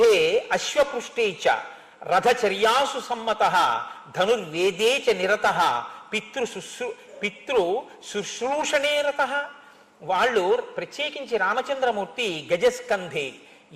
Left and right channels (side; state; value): both; identical; correlation 1.00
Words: అశ్వపృష్టే చ రథచర్యాసు సమ్మత ధనుర్వేదే చ నిరత పితృ శుశ్రూషణే రత. వాళ్ళు ప్రత్యేకించి రామచంద్రమూర్తి గజస్కంధే,